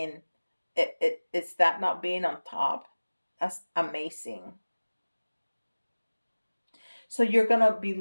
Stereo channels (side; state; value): both; inverted; correlation -1.00